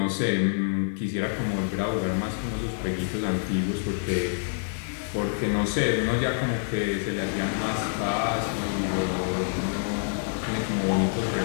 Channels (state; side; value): silent; right; 60 dB below the other